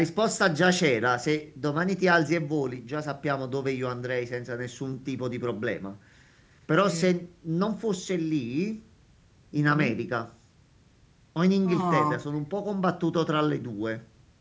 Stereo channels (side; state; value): both; identical; correlation 1.00